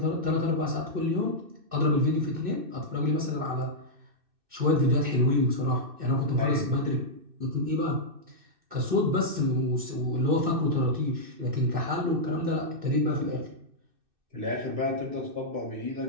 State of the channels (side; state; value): left; late; 2.6 ms